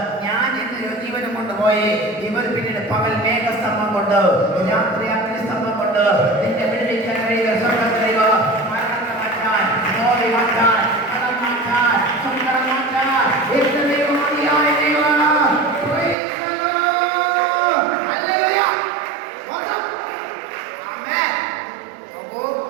ഞാൻ എന്റെ ജീവനം കൊണ്ടുപോയി. ഇവർ പിന്നീട് പകൽ മേഘസ്തംഭം കൊണ്ട്, രാത്രി അഗ്നിസ്തംഭം കൊണ്ട് നിന്റെ വിടുവിക്കാൻ കഴിയുക. സ്വർഗ്ഗത്തിലേവ മരണത്തെ മാറ്റാൻ, നോവി മാറ്റാൻ, കടം മാറ്റാൻ, സങ്കടം മാറ്റാൻ എന്റെ ദൈവമാണിയായ ദൈവം.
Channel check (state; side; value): drops out; left; at 16.2 s